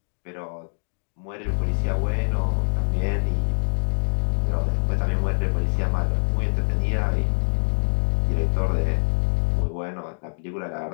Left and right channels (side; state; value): right; silent; digital silence